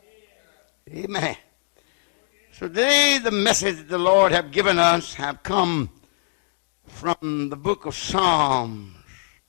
Amen. So today the message the Lord have given us have come from the book of Psalms.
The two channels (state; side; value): silent; right; digital silence